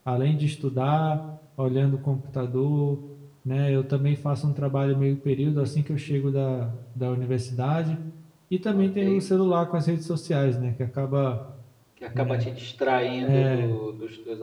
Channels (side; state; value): both; identical; correlation 1.00